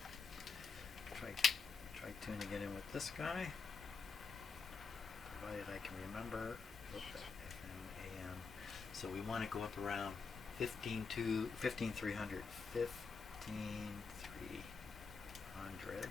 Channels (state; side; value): quieter; right; 5.0 dB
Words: Try tuning it in with this guy, provided I can remember. FM, AM. So we want to go up around 15,300. 15,300.